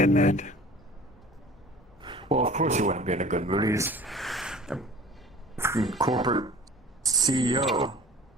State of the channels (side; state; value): both; normal; correlation 0.45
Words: mood. Well, of course he wouldn't be in a good mood. He's a corporate CEO